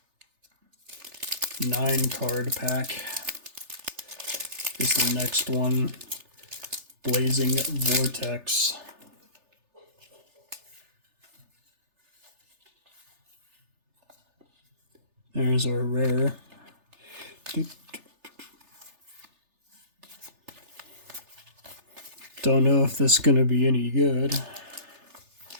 Nine-card pack is the next one. Blazing Vortex. There's our rare. Don't know if this is going to be any good.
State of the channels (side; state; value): left; late; 3.3 ms